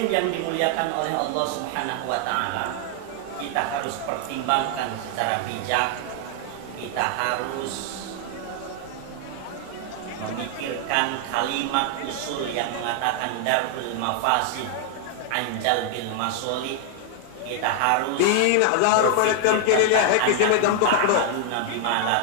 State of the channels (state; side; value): different; both; correlation 0.00